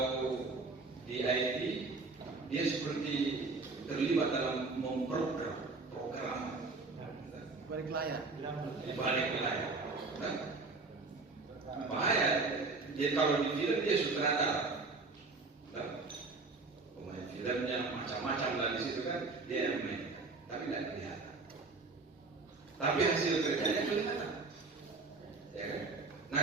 di IT dia seperti terlibat dalam memprogram balik layar. Bahaya. Dia kalau di film dia sutradara. Pemain filmnya macam-macam lah di situ kan, dia yang main, tapi tidak kelihatan. Tapi hasil kerjanya kelihatan. Ya kan? Nah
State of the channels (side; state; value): left; quieter; 3.8 dB